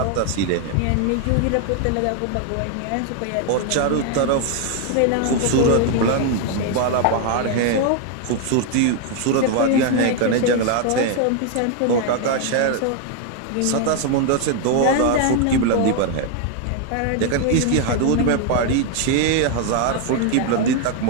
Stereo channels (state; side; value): different; both; correlation 0.01